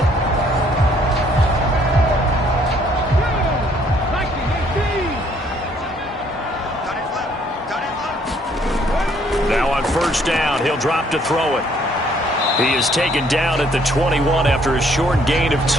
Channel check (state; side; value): normal; both; correlation 0.64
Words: first down. He'll drop to throw it. He is taken down at the 21 after a short gain of